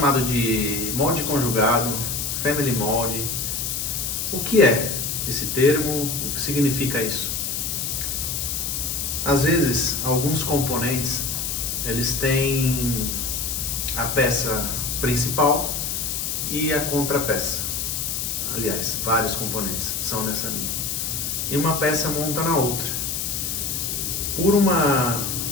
de molde conjugado, Family Mold. O que é esse termo? O que significa isso? Às vezes, alguns componentes, eles têm a peça principal e a contrapeça. Aliás, vários componentes são nessa linha. E uma peça monta na outra. Por uma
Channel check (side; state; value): left; noise; hiss, 2 dB below the sound